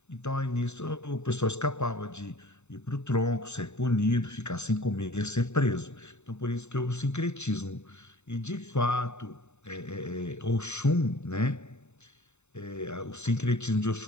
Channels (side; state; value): right; late; 0.82 ms